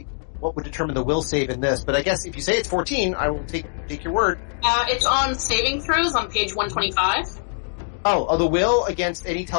what would determine the will save in this, but I guess if you say it's 14, I will take your word. It's on saving throws on page 125. Oh, the will against any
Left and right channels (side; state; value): right; silent; digital silence